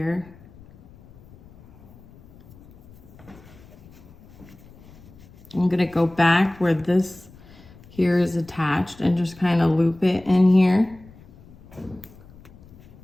I'm gonna go back where this here is attached and just kind of loop it in here.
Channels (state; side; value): noise; left; rumble, 23 dB below the sound